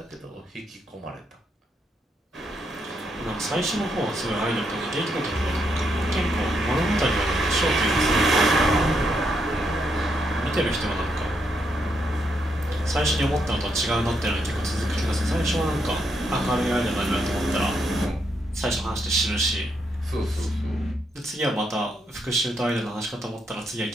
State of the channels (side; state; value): both; normal; correlation 0.78